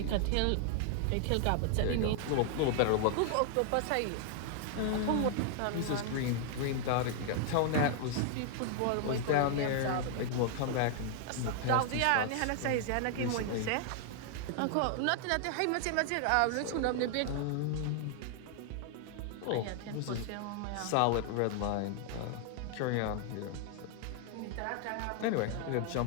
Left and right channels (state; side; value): different; both; correlation 0.00